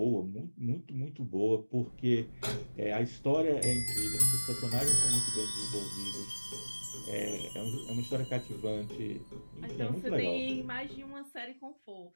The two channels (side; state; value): both; inverted; correlation -1.00